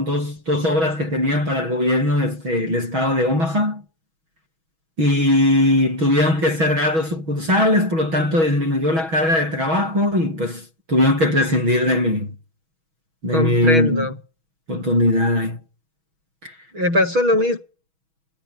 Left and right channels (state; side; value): late; left; 6.2 ms